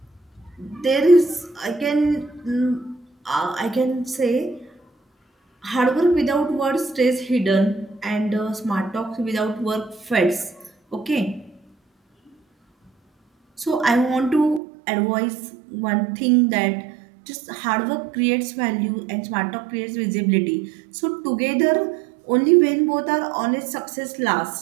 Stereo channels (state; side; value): drops out; left; at 14.6 s